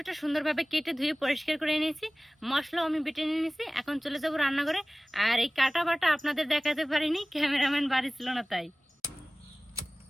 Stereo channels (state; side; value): normal; both; correlation 0.98